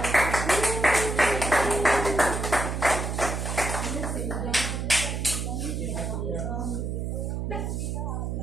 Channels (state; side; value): noise; right; hum, 2 dB below the sound